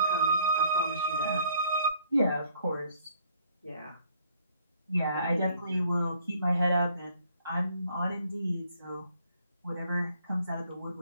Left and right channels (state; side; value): inverted; both; correlation -0.63